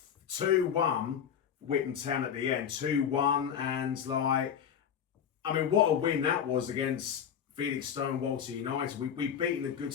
2-1 Witham Town at the end. 2-1, and like, I mean, what a win that was against Felix Stow and Walter United. We beaten a good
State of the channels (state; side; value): quieter; right; 8.3 dB